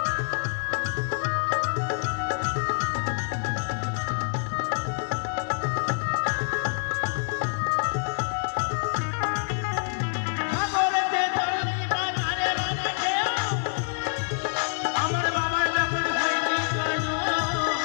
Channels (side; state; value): right; silent; 60 dB below the other